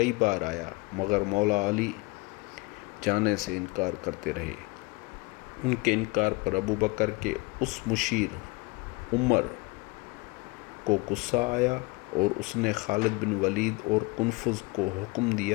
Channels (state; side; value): quieter; right; 25.6 dB